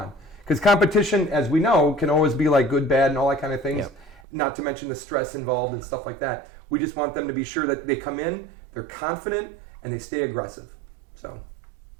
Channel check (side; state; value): left; drops out; at 4.2 s